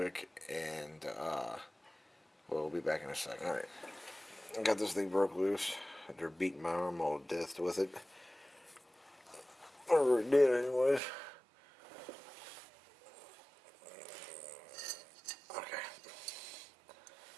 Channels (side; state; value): left; drops out; at 11.0 s